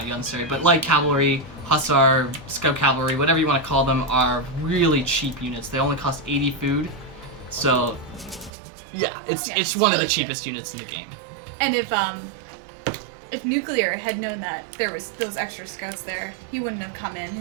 but light cavalry, hussar, scout cavalry, whatever you want to call them, are really cheap units. They only cost 80 food, so yeah, it's one of the cheapest units in the game. And if NuCL3aR had known that there was those extra scouts there, he wouldn't have come in.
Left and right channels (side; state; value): left; drops out; at 8.5 s